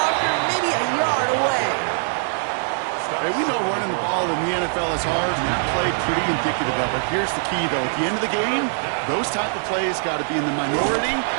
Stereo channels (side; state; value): left; silent; digital silence